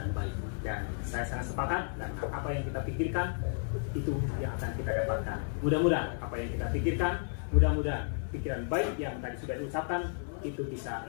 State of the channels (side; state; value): right; silent; 56 dB below the other